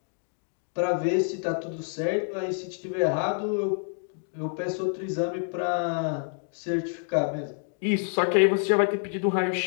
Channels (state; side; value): silent; right; 60 dB below the other